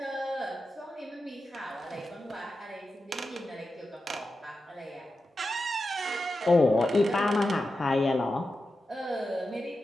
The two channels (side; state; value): both; normal; correlation 0.91